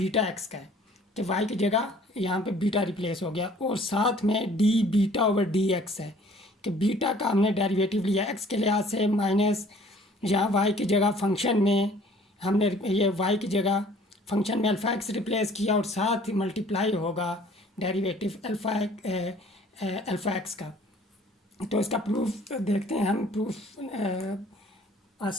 x का है कि Y की जगह यहाँ पे बीटा रिप्लेस हो गया, और साथ में D beta over d x है कि बीटा का हमने डेरिवेटिव लिया एक्स के लिहाज से, माइनस यहाँ वाई की जगह फंक्शन में हमने ये वाई की जगह फंक्शन में अल्फ़ा एक्स रिप्लेस किया, और साथ ही मल्टीप्लाई होगा डेरिवेटिव अल्फ़ा एक्स का। तो इसका प्रूफ देखते हैं हम। प्रूफ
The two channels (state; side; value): normal; both; correlation 0.54